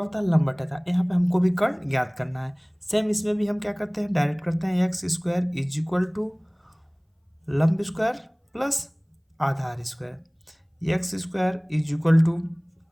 है लंब बटे आधार। यहाँ पे हमको भी कर्ण ज्ञात करना है। सेम इसमें भी हम क्या करते हैं, डायरेक्ट करते हैं, X square is equal to लंब स्क्वायर प्लस आधार square. X square is equal to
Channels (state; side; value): identical; both; correlation 1.00